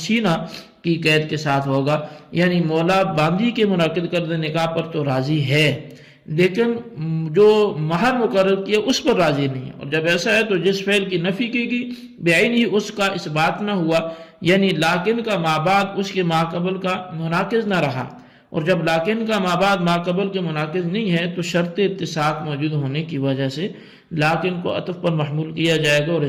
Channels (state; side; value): identical; both; correlation 1.00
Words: کی قید کے ساتھ ہوگا، یعنی مولا باندی کے منعقد کردہ نکاح پر تو راضی ہے لیکن جو مہر مقرر کیا اس پر راضی نہیں ہے، اور جب ایسا ہے تو جس فعل کی نفی کی گئی بعین ہی اس کا اس بات نہ ہوا، یعنی لاکن کا مابعد اس کے ماقبل کا مناقض نہ رہا، اور جب لاکن کا مابعد ماقبل کے مناقض نہیں ہے تو شرط اتساق موجود ہونے کی وجہ سے لاکن کو عطف پر محمول کیا جائے گا اور